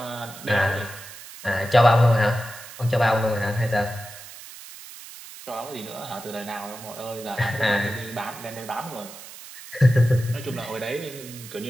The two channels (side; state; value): right; noise; hiss, 15 dB below the sound